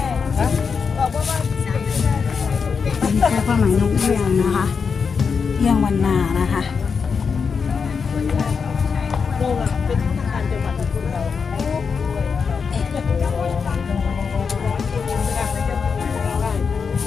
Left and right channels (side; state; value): right; quieter; 5.7 dB